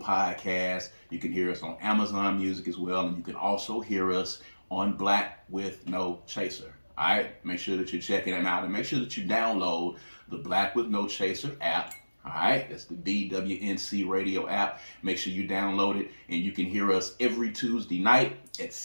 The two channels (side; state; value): both; inverted; correlation -1.00